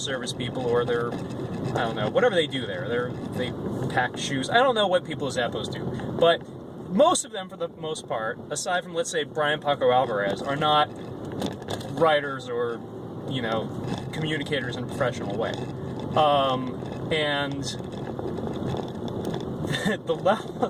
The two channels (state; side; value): identical; both; correlation 1.00